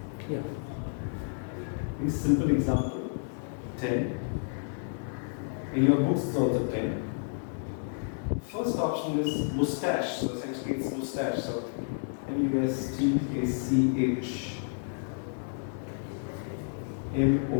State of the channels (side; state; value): right; silent; digital silence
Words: Yeah. A simple example, 10. In your books it's also 10. First option is mustache. So essentially it's mustache. So M-U-S-T-A-C-H.